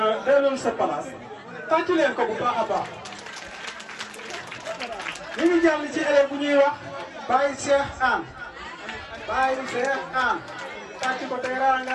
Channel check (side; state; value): both; identical; correlation 1.00